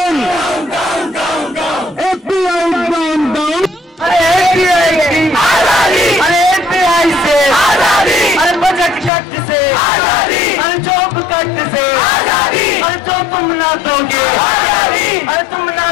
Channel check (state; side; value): drops out; right; at 9.1 s